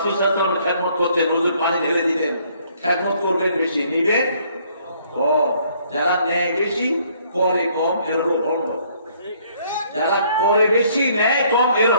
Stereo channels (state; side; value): inverted; both; correlation -0.64